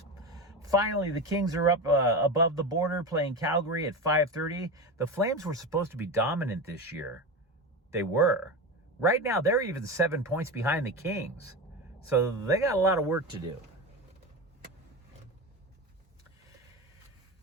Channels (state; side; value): normal; both; correlation 0.22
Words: Finally, the Kings are up above the border playing Calgary at 5:30. The Flames were supposed to be dominant this year. They were. Right now, they're even 7 points behind the Kings. So they got a lot of work to do.